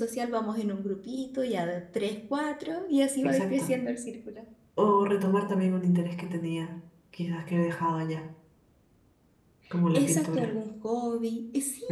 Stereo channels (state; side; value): identical; both; correlation 1.00